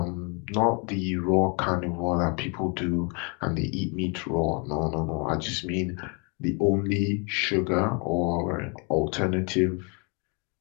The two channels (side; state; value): right; quieter; 34.7 dB